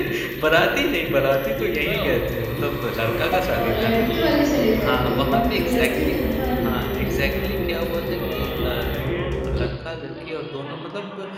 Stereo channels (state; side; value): identical; both; correlation 1.00